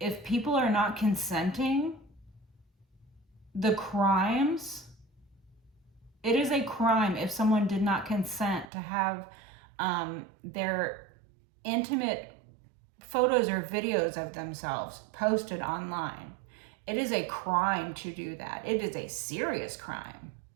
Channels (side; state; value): left; drops out; at 8.7 s